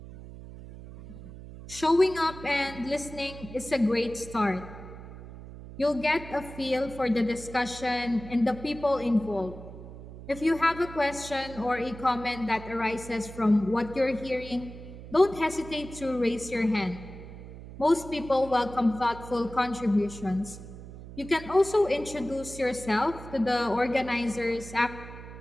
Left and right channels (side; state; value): right; noise; hum, 14 dB below the sound